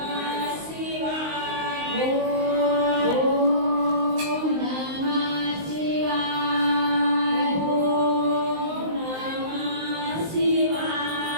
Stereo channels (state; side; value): late; left; 19 ms